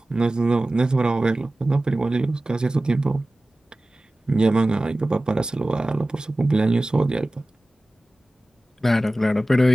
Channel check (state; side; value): normal; both; correlation 0.97